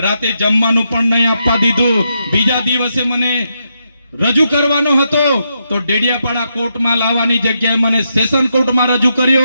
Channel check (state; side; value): inverted; both; correlation -0.82